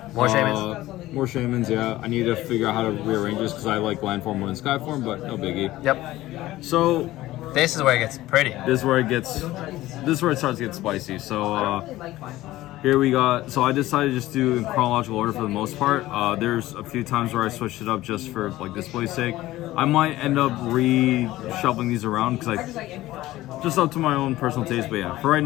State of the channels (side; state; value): right; quieter; 16.4 dB